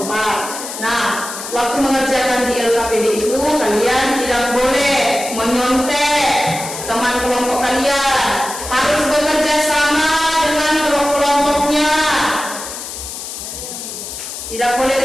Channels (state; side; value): noise; left; hiss, 9 dB below the sound